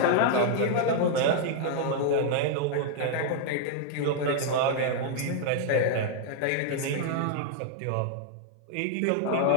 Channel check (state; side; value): different; both; correlation 0.00